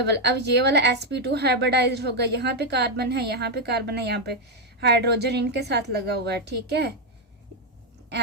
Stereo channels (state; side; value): normal; both; correlation 0.03